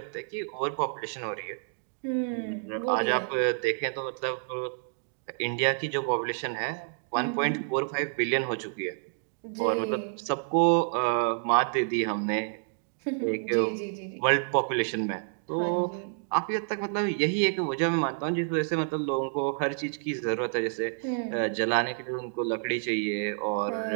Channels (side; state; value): left; silent; digital silence